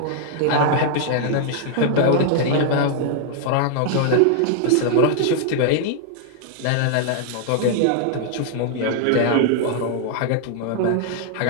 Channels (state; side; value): different; both; correlation 0.00